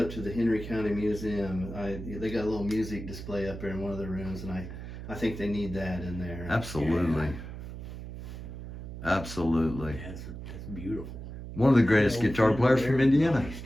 to the Henry County Museum. They got a little music display up there in one of the rooms, and I think they need that in there. Absolutely. Absolutely. That's beautiful. One of the greatest guitar players from Indiana. Nice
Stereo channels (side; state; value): right; noise; hum, 10 dB below the sound